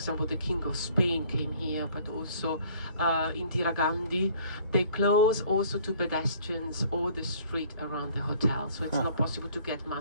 the King of Spain came here, but also Indira Gandhi. They close also to pedestrians all the street around the hotel, so it's not possible to get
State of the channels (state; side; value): inverted; both; correlation -0.56